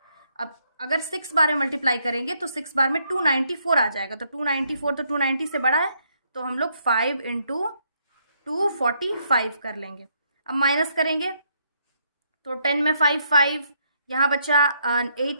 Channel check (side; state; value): both; inverted; correlation -0.73